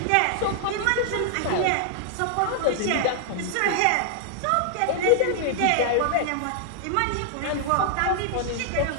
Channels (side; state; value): both; different; correlation -0.01